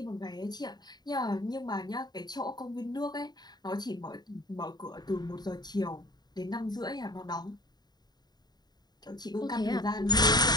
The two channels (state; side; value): late; right; 0.20 ms